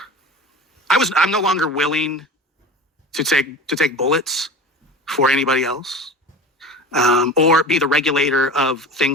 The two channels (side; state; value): both; normal; correlation 0.33